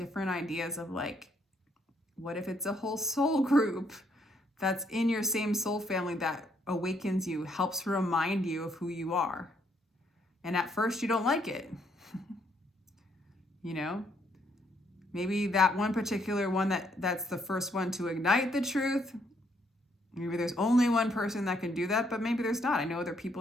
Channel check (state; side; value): normal; both; correlation 0.71